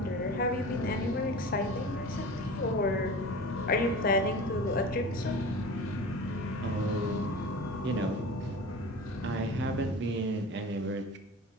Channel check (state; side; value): normal; both; correlation 0.35